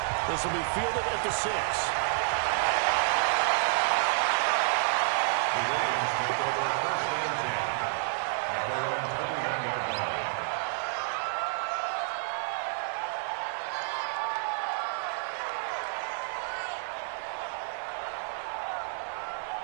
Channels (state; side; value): silent; left; digital silence